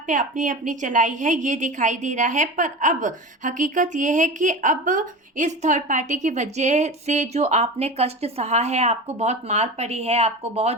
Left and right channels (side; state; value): both; normal; correlation 0.30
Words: पे अपनी अपनी चलाई है, ये दिखाई दे रहा है। पर अब हकीकत ये है कि अब इस थर्ड पार्टी की वजह से जो आपने कष्ट सहा है, आपको बहुत मार पड़ी है, आपको